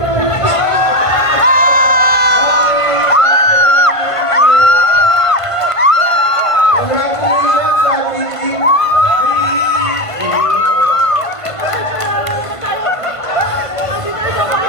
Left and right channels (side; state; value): right; late; 1.5 ms